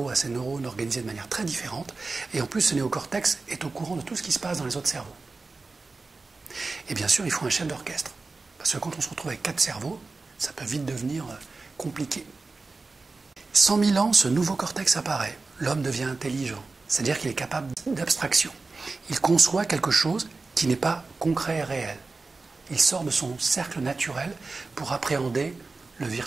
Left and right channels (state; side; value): quieter; left; 3.8 dB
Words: a ses neurones organisés de manière très différente. Et en plus, ce néocortex est au courant de tout ce qui se passe dans les autres cerveaux. Et bien sûr, il faut un chef d'orchestre. Parce que quand on se retrouve avec 4 cerveaux, ça peut vite devenir compliqué. 100 000 ans, ce nouveau cortex apparaît. L'homme devient intelligent. C'est-à-dire qu'il est capable d'abstraction. Il conçoit quelque chose qui n'est pas concret et réel. Il sort de son cercle naturel pour appréhender le